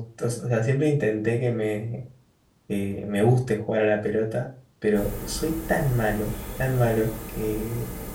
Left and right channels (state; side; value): identical; both; correlation 1.00